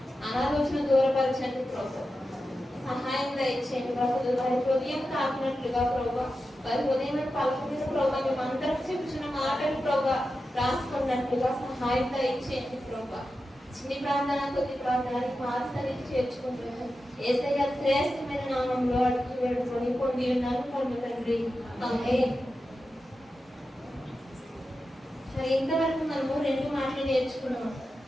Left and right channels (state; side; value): normal; both; correlation 0.91